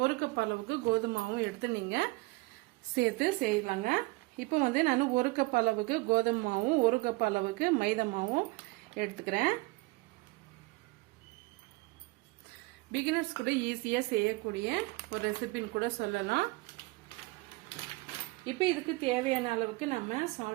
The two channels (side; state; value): left; quieter; 23.3 dB